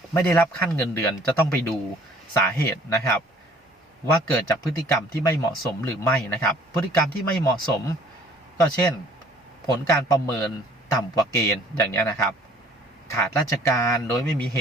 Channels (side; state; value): both; normal; correlation 0.55